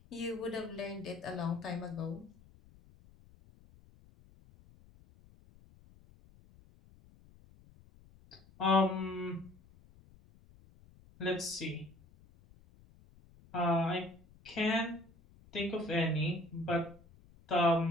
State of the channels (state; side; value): noise; left; rumble, 25 dB below the sound